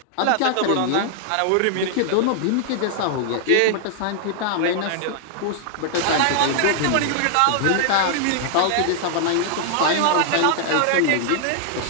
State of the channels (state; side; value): different; both; correlation 0.00